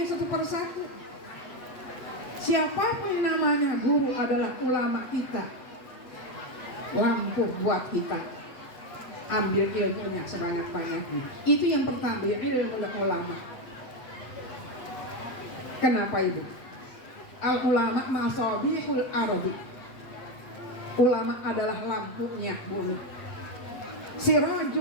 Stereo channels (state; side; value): late; right; 8.0 ms